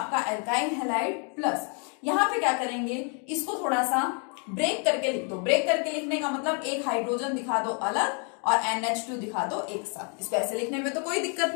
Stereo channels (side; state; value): right; quieter; 39.2 dB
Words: एल्काइल हैलाइड प्लस, यहाँ पे क्या करेंगे, इसको थोड़ा सा ब्रेक करके लिख दो। ब्रेक करके लिखने का मतलब एक हाइड्रोजन दिखा दो अलग और NH2 दिखा दो एक साथ। इसको ऐसे लिखने में तो कोई दिक्कत